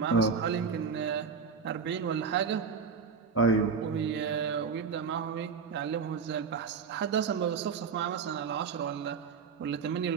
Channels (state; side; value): quieter; left; 5.7 dB